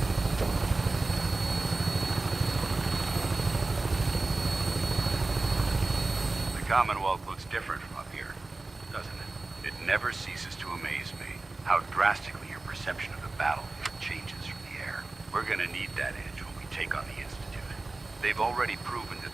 The Commonwealth looks different from up here, doesn't it? It never ceases to amaze me how drastically your perception of the battlefield changes from the air. We're gonna need that edge when we take on the Institute. They've already proven that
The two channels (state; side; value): quieter; left; 3.3 dB